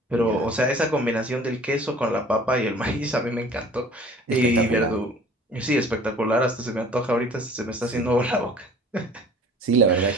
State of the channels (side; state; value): both; normal; correlation 0.49